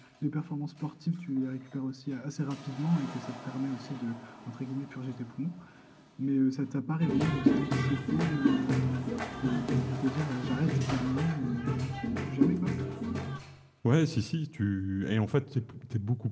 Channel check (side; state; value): both; identical; correlation 1.00